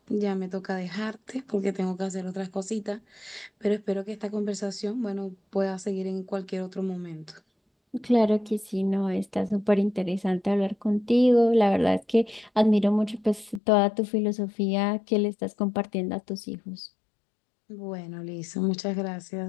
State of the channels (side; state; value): right; drops out; at 13.6 s